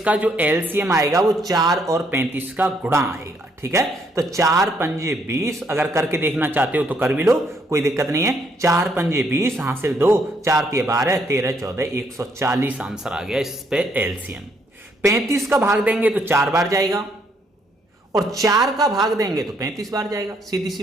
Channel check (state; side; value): normal; both; correlation 0.70